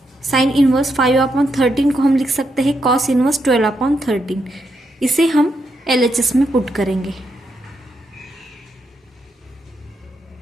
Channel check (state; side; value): normal; both; correlation 0.81